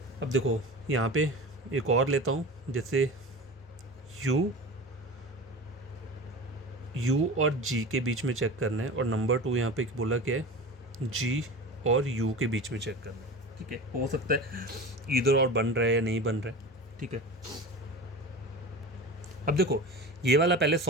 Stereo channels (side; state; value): both; normal; correlation 0.32